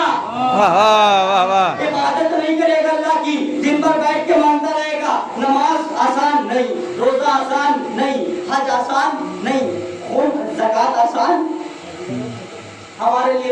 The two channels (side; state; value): both; identical; correlation 1.00